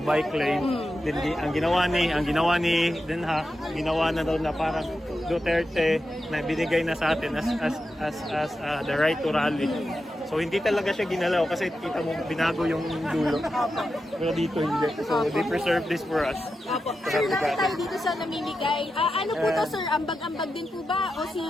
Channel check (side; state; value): both; normal; correlation 0.89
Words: lane. Then ang ginawa ni Den Haag, ginawa na daw na parang Duterte na binigay na sa atin as the right to rally. So hindi talaga siya ginalaw kasi kita mo binago yung dulo. Pero dito hindi. So they preserve this for us. Sir, nakita tayo dito sa namimigay. Ano po to, sir? Ambag-ambag din po ba? O si...